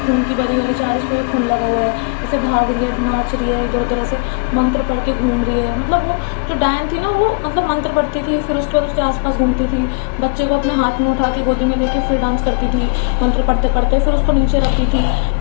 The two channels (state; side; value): quieter; right; 34.6 dB